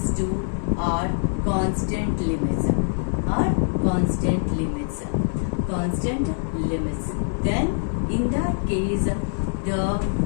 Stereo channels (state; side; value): silent; right; digital silence